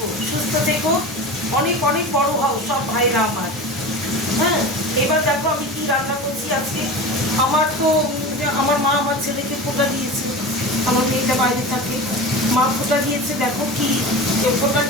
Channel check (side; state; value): both; normal; correlation 0.30